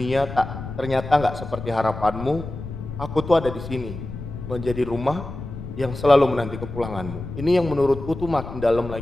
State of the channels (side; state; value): left; noise; rumble, 10 dB below the sound